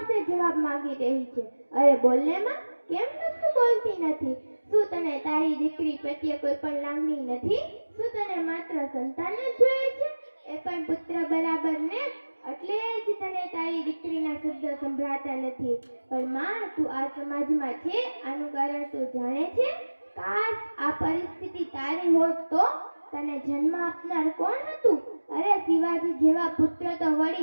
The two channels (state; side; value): inverted; both; correlation -1.00